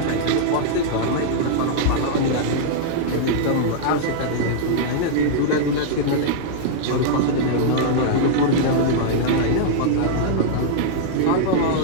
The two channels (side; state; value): both; different; correlation -0.01